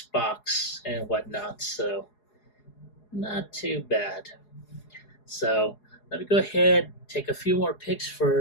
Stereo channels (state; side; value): late; right; 4.8 ms